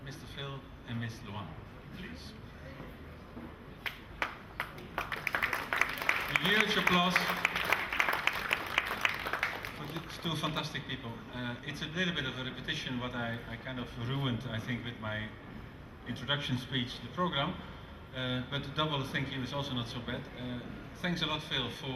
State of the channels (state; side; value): identical; both; correlation 1.00